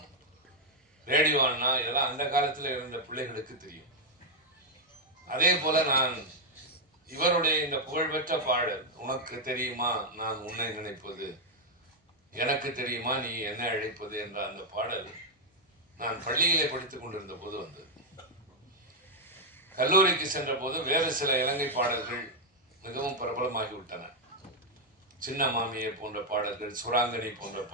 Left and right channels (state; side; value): normal; both; correlation 0.01